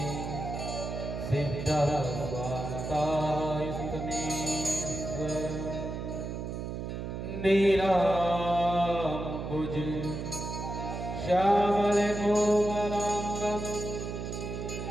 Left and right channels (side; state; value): right; noise; hum, 5 dB below the sound